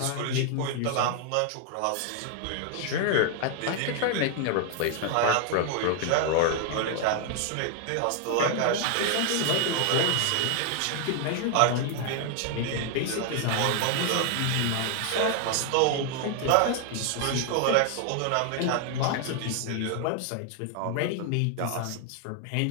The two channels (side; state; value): both; different; correlation 0.00